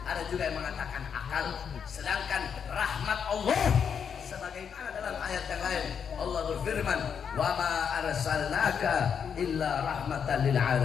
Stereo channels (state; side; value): quieter; right; 7.2 dB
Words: ada juga yang mengatakan akal. Sedangkan rahmat Allah, sebagaimana dalam ayat yang lain Allah berfirman, "Wa ma arsalnaka illa rahmatan lil